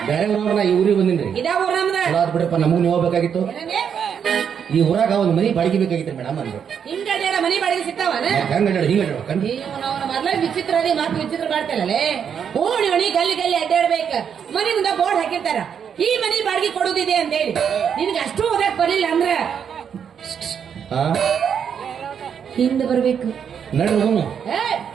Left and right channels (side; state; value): left; quieter; 7.7 dB